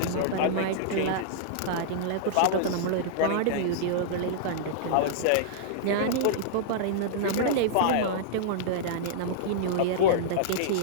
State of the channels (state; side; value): different; both; correlation -0.02